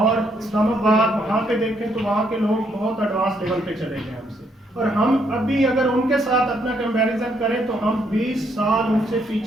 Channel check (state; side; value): normal; both; correlation 0.72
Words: इस्लामाबाद, वहाँ पे देखें तो वहाँ के लोग बहुत एडवांस लेवल पे चले गए हमसे, और हम अभी अगर उनके साथ अपना कंपैरिजन करें तो हम 20 साल उनसे